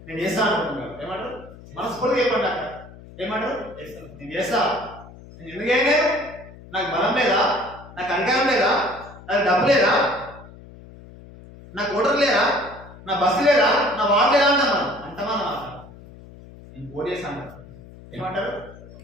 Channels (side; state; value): left; noise; hum, 19 dB below the sound